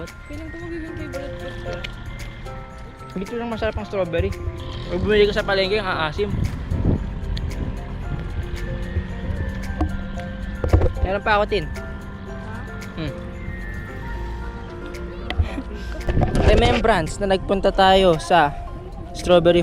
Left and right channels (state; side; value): identical; both; correlation 1.00